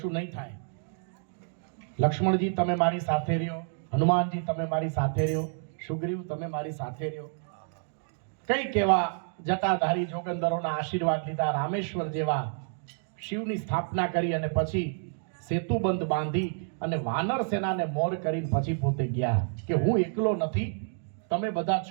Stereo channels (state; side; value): silent; left; 59 dB below the other